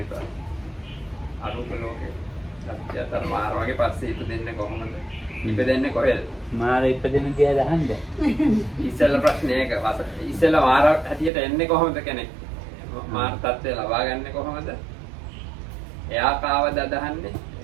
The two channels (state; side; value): drops out; left; at 11.3 s